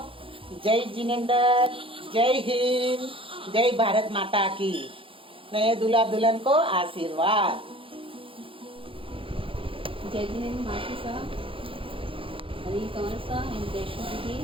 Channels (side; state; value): left; late; 0.26 ms